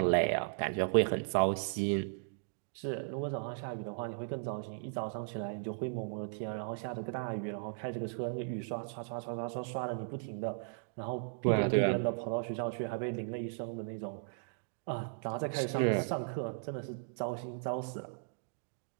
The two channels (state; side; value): silent; left; digital silence